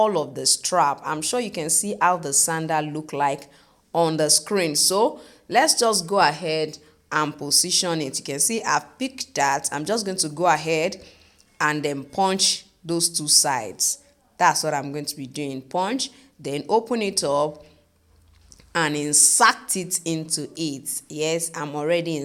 of the strap. I'm sure you can see how the sandal look like on the screen. So let's just go ahead and position it. You can see I've picked that. I'm just going to go ahead and then punch those two sides. That's what I'm going to be doing. Punch, then open it up and insert it into it. Yes, I'm already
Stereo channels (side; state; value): both; identical; correlation 1.00